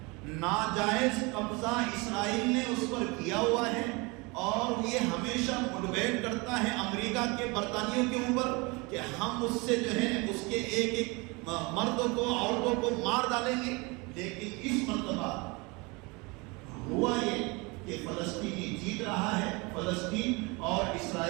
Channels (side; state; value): left; quieter; 27.0 dB